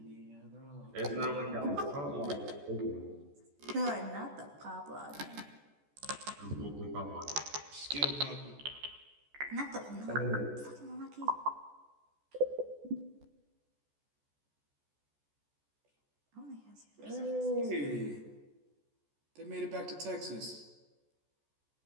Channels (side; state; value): left; late; 14 ms